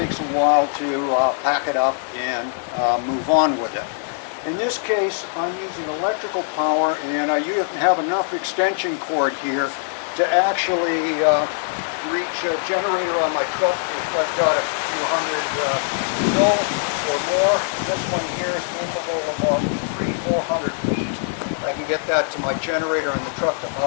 a while to pack it up and move on with it. In this case, I'm using electrical power, and I have enough extension cord here to actually reach a generator on my truck if I've got a few hundred mil or more. This one here is capable of about 300-400 feet. I can get that to my generator in the truck to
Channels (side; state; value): right; silent; digital silence